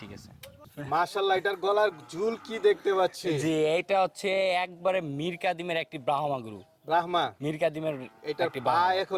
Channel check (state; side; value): identical; both; correlation 1.00